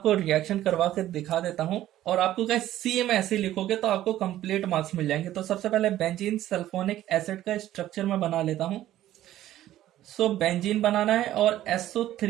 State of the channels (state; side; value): quieter; left; 13.5 dB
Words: रिएक्शन करवा के दिखा देता हूं, और आपको क्या सी में ऐसे लिखोगे तो आपको कंप्लीट मार्क्स मिल जाएंगे। तो सबसे पहले बेंजीन सल्फोनिक एसिड का स्ट्रक्चर मैं बना लेता हूं। सो बेंजीन बनाना है, और